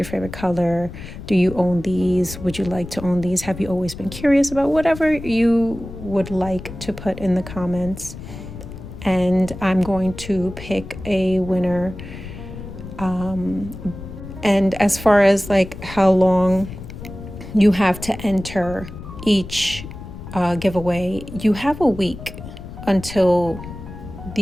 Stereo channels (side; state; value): left; noise; rumble, 12 dB below the sound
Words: favorite color. Do you own these? Would you like to own these? Have you always been curious about whatever you would like to put in the comments? And I'm going to pick a winner. And as far as like how long you have to enter each giveaway, you have a week until